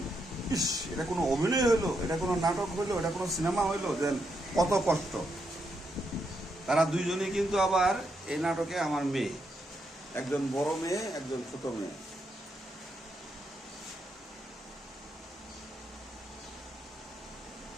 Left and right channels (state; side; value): normal; both; correlation 0.80